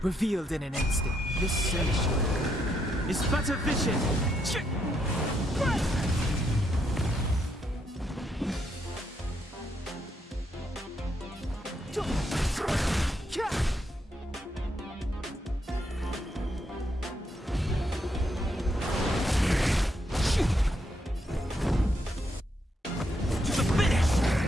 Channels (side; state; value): both; normal; correlation 0.77